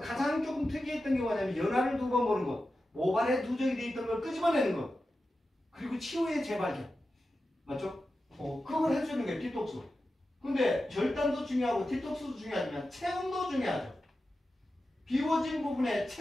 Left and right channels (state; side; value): normal; both; correlation 0.92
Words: 가장 조금 특이했던 게 뭐냐면 연화를 두 번 보는 것, 모발에 누적이 돼 있던 걸 끄집어내는 것, 그리고 치유의 재발견. 맞죠? 그걸 해주는 게 디톡스. 근데 절단도 중요하고 디톡스도 중요하지만 체온도 중요하죠. 비워진 부분에